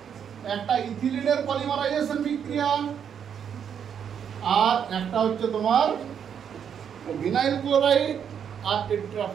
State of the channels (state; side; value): quieter; left; 8.0 dB